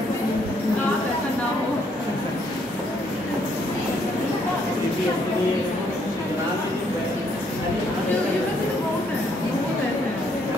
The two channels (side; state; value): both; normal; correlation 0.70